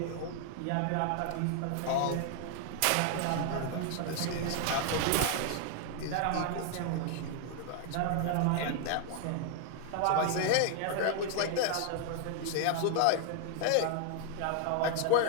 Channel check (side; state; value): both; different; correlation 0.00